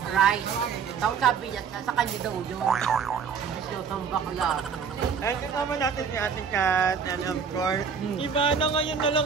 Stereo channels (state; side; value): quieter; left; 6.5 dB